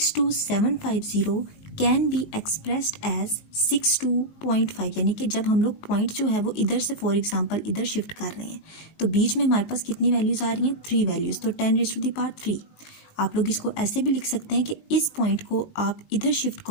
can be expressed as 62.5। यानी कि जब हम लोग पॉइंट जो है वो इधर से फॉर एग्जांपल इधर शिफ्ट कर रहे हैं तो बीच में हमारे पास कितनी वैल्यूज़ आ रही हैं? 3 वैल्यूज़, तो 10 रेज़ टू दी पावर 3। आप लोग इसको ऐसे भी लिख सकते हैं कि इस पॉइंट को आप इधर शिफ्ट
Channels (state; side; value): late; right; 19 ms